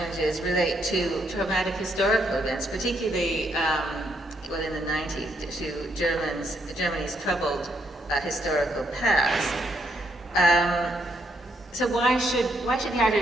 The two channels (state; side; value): normal; both; correlation 0.75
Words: relate to traumatic historical events, particularly, in the 90s, to Germany's troubled historical past. So why should the